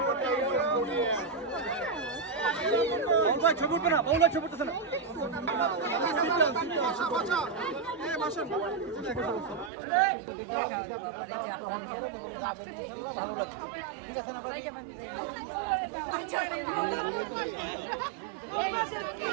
ছবি উঠবে না, বাউল ছবি উঠতেছে না।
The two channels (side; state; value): left; drops out; at 9.7 s